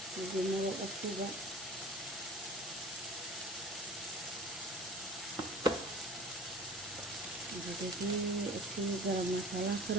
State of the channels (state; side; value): normal; both; correlation 0.42